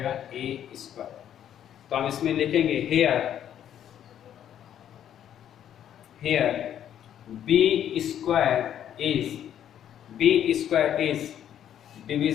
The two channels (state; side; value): quieter; right; 10.2 dB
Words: a स्क्वायर। तो हम इसमें लिखेंगे here b square is